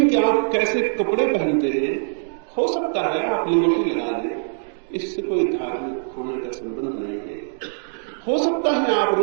कि आप कैसे कपड़े पहनते हैं, हो सकता है आप लिबर्टी लगा लें, इससे कोई धार्मिक होने का संबंध नहीं है। हो सकता है आप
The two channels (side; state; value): left; silent; digital silence